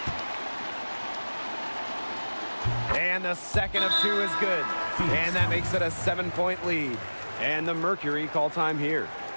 And the second of 2 is good. And that makes it a 7-point lead. And the Mercury call time here.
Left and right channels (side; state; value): both; inverted; correlation -1.00